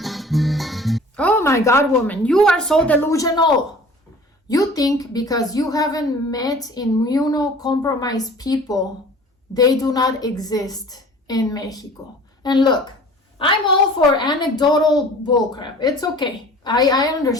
Oh my God, woman, you are so delusional. You think because you haven't met immunocompromised people, they do not exist in Mexico. And look, I'm all for anecdotal bullcrap. It's okay. I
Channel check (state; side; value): normal; both; correlation 0.46